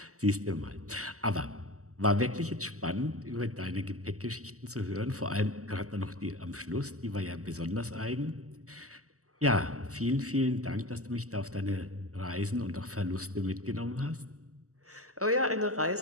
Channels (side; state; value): left; late; 0.66 ms